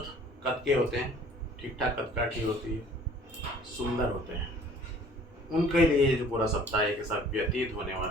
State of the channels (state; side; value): normal; both; correlation 0.53